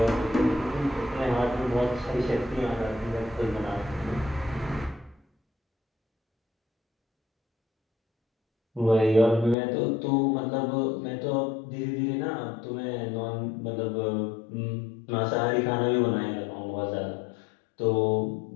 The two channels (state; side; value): drops out; right; at 9.6 s